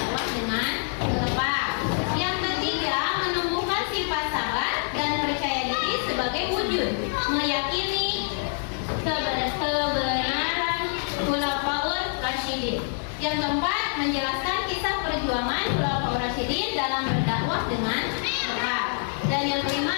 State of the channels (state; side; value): silent; right; 61 dB below the other